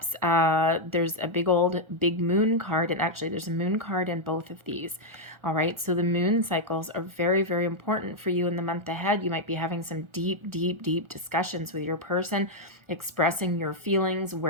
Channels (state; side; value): late; left; 1.4 ms